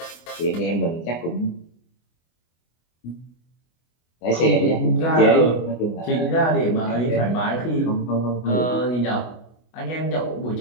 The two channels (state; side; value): late; right; 24 ms